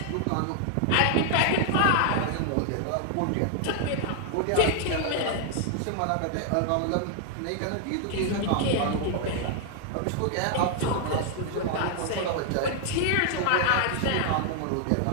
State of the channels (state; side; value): different; both; correlation 0.00